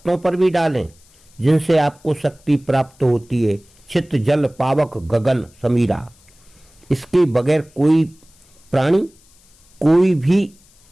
पर भी डालें जिनसे आपको शक्ति प्राप्त होती है। चित्त जल पावक गगन समीरा, इसके बगैर कोई प्राणी, कोई भी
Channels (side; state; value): left; noise; hiss, 30 dB below the sound